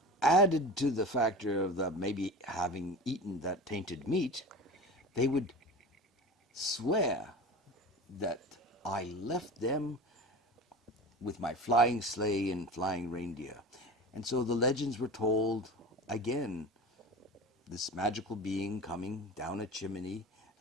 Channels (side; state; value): both; normal; correlation 0.32